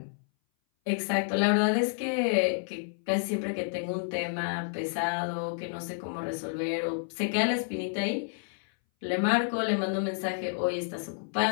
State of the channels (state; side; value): silent; right; 58 dB below the other